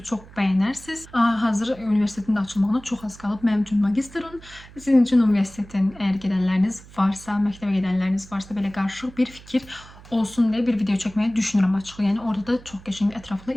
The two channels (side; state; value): right; noise; hum, 20 dB below the sound